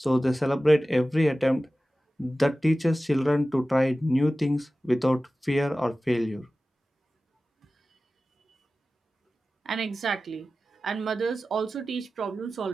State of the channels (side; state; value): both; normal; correlation 0.96